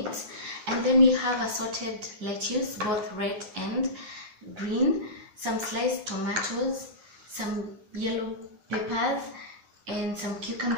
And then we have assorted lettuce, both red and green, some sliced tomatoes, some yellow peppers, and some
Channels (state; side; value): late; left; 9.6 ms